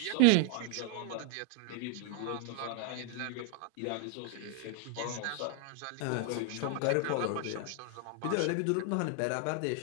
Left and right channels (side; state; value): both; different; correlation 0.01